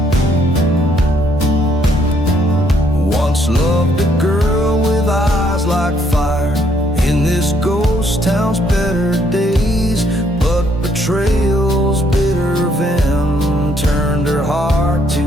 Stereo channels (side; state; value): both; normal; correlation 0.69